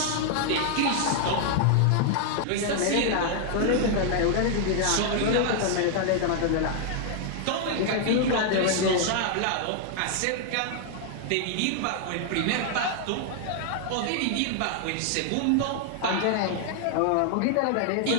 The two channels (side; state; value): both; different; correlation 0.00